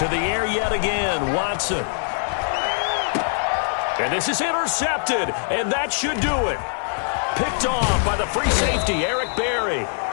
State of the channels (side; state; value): right; silent; 64 dB below the other